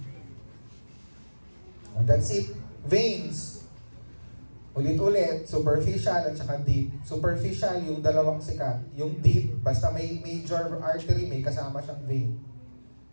That's it. Veins. Ulit-ulit, superficial at saka deep. Superficial, yung dalawang sikat. Yung deep, basta may major artery, may kasama siyang vein.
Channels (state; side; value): inverted; both; correlation -1.00